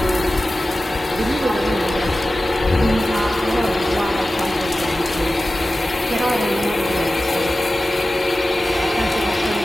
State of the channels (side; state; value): both; normal; correlation 0.95